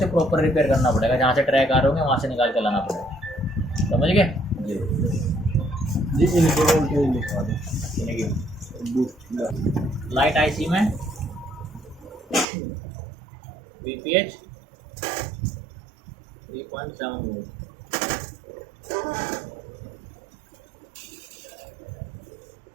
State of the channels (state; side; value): drops out; left; at 12.5 s